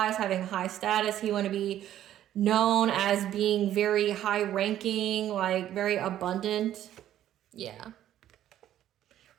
having high status. He wanted to be known as being very high ranking, like very abundant. Yeah.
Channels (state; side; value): quieter; left; 12.0 dB